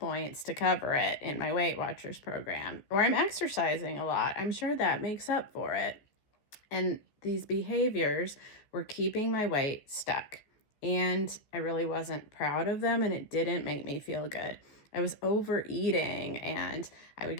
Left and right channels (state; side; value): late; right; 14 ms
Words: to cover it in my Weight Watchers program. Or I'm exercising a lot. I'm sure that makes up for it. And these behaviors were keeping my weight stuck. And I really wasn't proud of them, and it didn't make me feel good. I was overeating, and I would